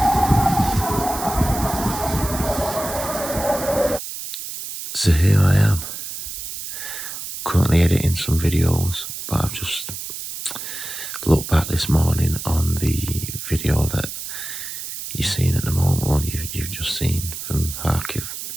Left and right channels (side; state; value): right; noise; hiss, 8 dB below the sound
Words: So here I am, currently editing some videos, but I've just looked back this morning on the video that you're seeing at the moment, or you've just seen from Kharkiv.